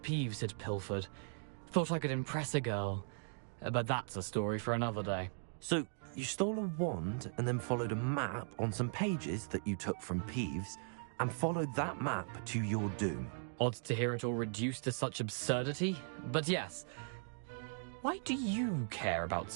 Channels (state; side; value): silent; left; digital silence